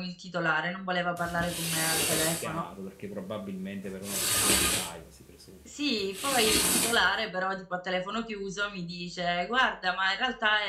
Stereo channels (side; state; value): both; identical; correlation 1.00